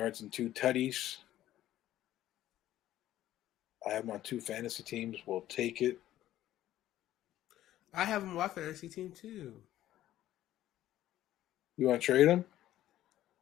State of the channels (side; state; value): right; quieter; 13.5 dB